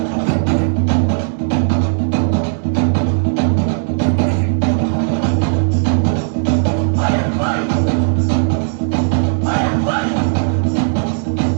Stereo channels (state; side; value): silent; left; 67 dB below the other